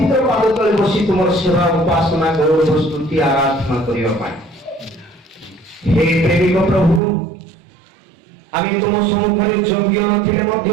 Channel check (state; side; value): drops out; left; at 7.0 s